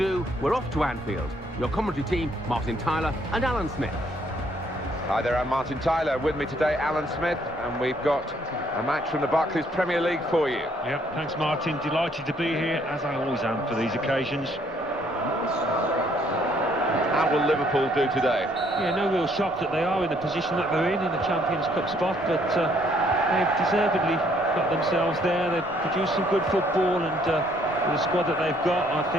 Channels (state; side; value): normal; both; correlation 0.66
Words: we're off to Anfield. Your commentary team, Martin Tyler and Alan Smith. Hi there, I'm Martin Tyler. With me today, Alan Smith, and we've got a match from the Barclays Premier League for you. Yep, thanks Martin. Delighted to be here, as I always am for these occasions. How will Liverpool do today? Yeah, no real shock that they are in the position that they're in a Champions Cup spot, but they've deservedly got themselves there. They've produced some good football, and with the squad that they've got, I